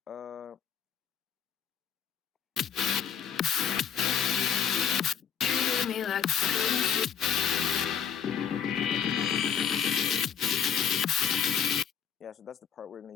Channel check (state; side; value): quieter; right; 8.0 dB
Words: Me like yeah, so that's the part we're going